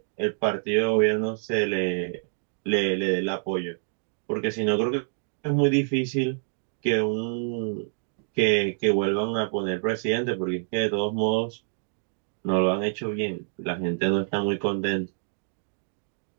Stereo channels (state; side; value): silent; left; digital silence